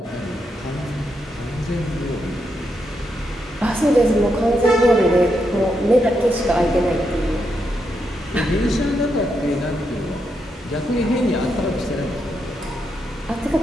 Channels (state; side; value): normal; both; correlation 0.82